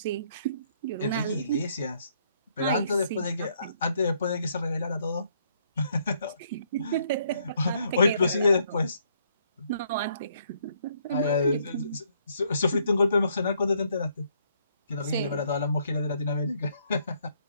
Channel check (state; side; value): inverted; both; correlation -0.69